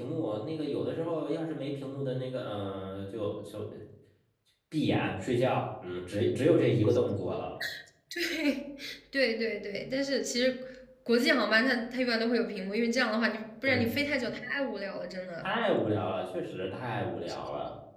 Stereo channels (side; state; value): both; identical; correlation 1.00